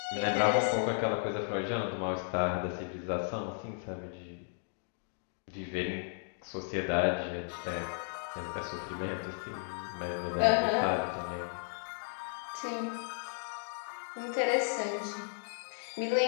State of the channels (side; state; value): right; silent; digital silence